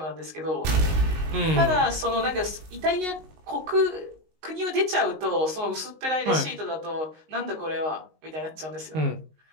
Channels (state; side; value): late; left; 19 ms